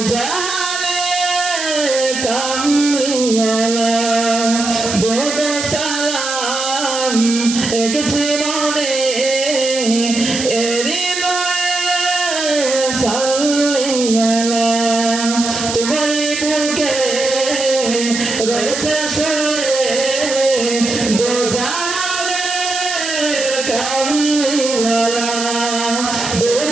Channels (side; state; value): right; noise; hiss, 4 dB below the sound